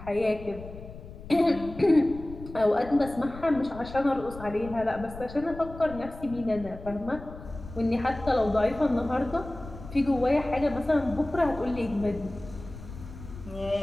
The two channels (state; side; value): noise; left; rumble, 14 dB below the sound